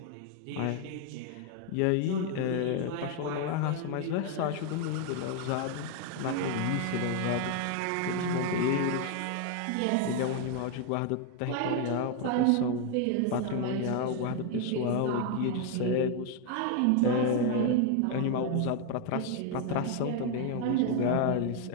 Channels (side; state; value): both; different; correlation 0.01